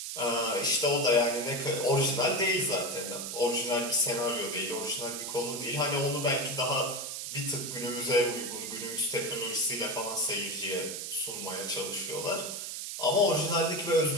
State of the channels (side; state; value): right; noise; hiss, 6 dB below the sound